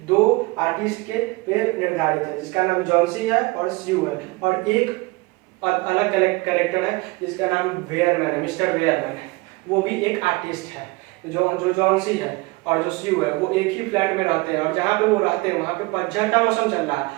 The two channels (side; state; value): left; quieter; 24.1 dB